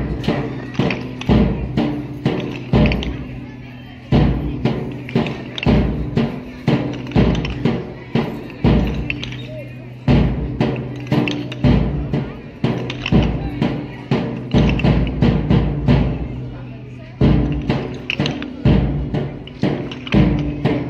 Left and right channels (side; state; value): both; identical; correlation 1.00